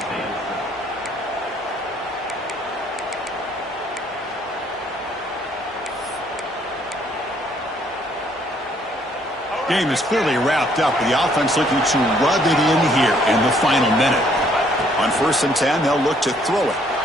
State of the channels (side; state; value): both; normal; correlation 0.65